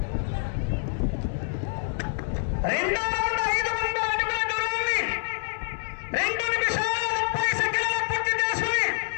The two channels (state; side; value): silent; right; 60 dB below the other